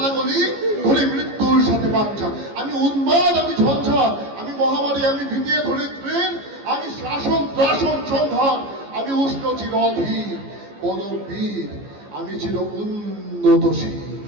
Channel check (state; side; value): late; left; 15 ms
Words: ধরি মৃত্যুর সাথে বাঞ্ছা, আমি উন্মাদ, আমি ঝঞ্ঝা, আমি মহামারী, আমি ভীতিয়ে ধরিত্রীর, আমি শাসন ত্রাসন সংহার, আমি উষ্ণ চির অধীর বলবীর আমি চির উন্নতশীল,